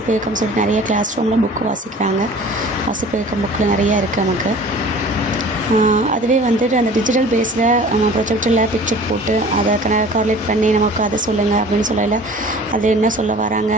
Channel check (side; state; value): both; normal; correlation 0.45